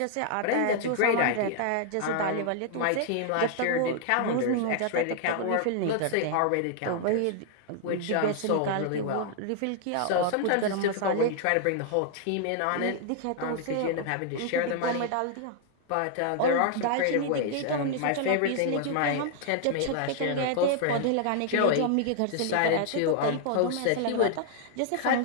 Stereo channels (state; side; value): different; both; correlation 0.00